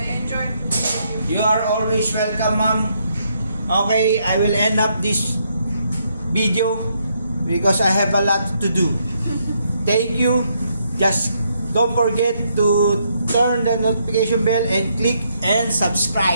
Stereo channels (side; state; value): both; inverted; correlation -0.75